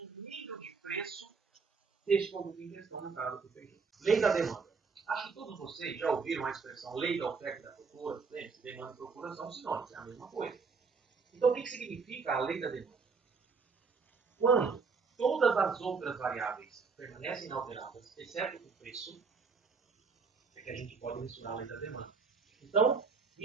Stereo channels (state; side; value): quieter; left; 5.0 dB